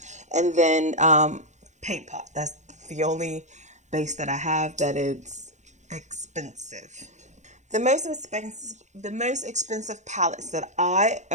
And then paint pot. That's the only base that I have that is expensive. The most expensive palettes that I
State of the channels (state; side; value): late; left; 0.34 ms